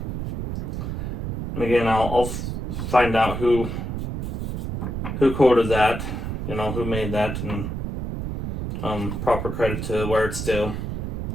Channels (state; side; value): noise; right; rumble, 4 dB below the sound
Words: And again, I'll find out who quoted that, you know, who made that, and proper credit to where it's due.